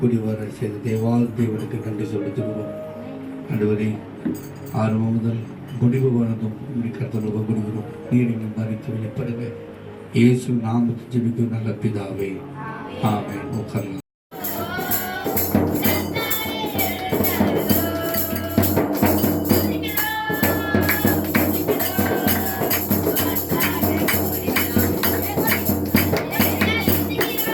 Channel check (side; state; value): both; identical; correlation 1.00